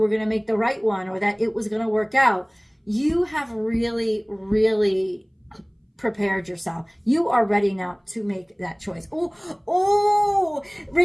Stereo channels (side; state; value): both; identical; correlation 1.00